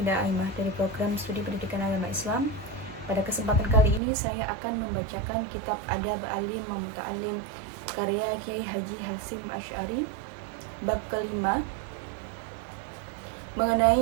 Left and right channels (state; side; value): drops out; left; at 4.0 s